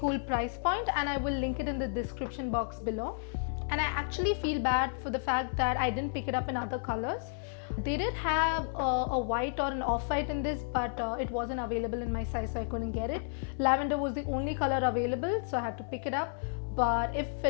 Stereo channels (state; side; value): silent; right; 56 dB below the other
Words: price point and I will link it in the description box below. And I actually feel bad for the fact that I didn't pick it up in other colors. They did have a white or an off-white in this, but it wasn't available in my size, so I couldn't get it. Lavender was the only color available, so I had to pick it up. But if